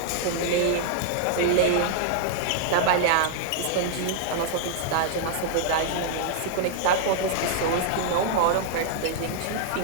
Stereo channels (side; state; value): both; different; correlation -0.01